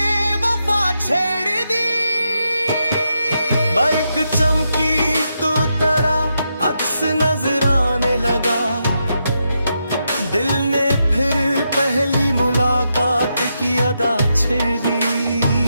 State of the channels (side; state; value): both; inverted; correlation -0.83